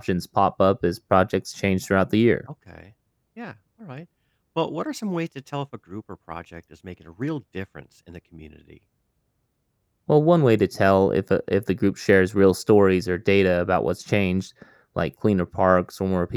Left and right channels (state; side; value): identical; both; correlation 1.00